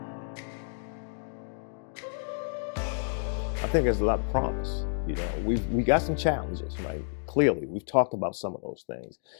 I think there's a lot of promise. We got some challenges, right? Clearly, we've talked about some of those things,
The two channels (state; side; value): silent; right; digital silence